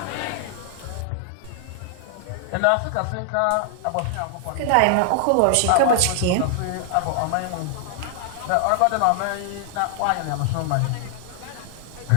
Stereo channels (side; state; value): both; different; correlation 0.00